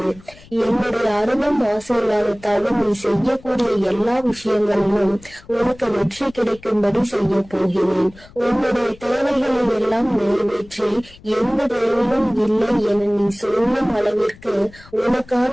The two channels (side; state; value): left; noise; rumble, 23 dB below the sound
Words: என்னுடைய அருளும் ஆசீர்வாதத்தாலும் நீ செய்யக்கூடிய எல்லா விஷயங்களிலும் உனக்கு வெற்றி கிடைக்கும்படி செய்ய போகிறேன். உன்னுடைய தேவைகளை எல்லாம் நிறைவேற்றி எந்த தேவையும் இல்லை என நீ சொல்லும் அளவிற்கு